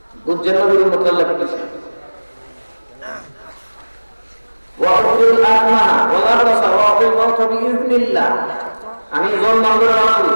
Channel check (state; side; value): inverted; both; correlation -1.00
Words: বুঝছেন নবীর মত আল্লাহ কি বলেছেন ওয়াউল আতমা ওয়ালা রাসা ওয়াউল মাউত বিইজনিল্লাহ আমি জন্ম করে রাখি